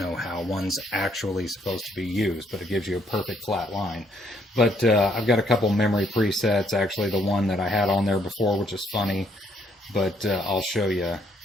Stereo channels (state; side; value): normal; both; correlation 0.69